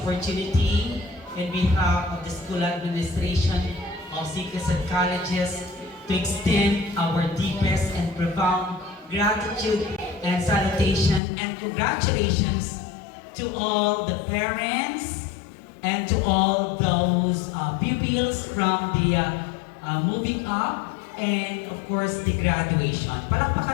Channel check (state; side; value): drops out; right; at 11.2 s